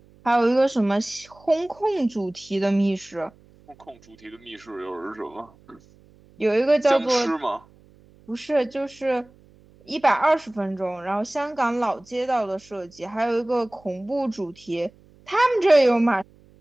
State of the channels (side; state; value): right; noise; hum, 28 dB below the sound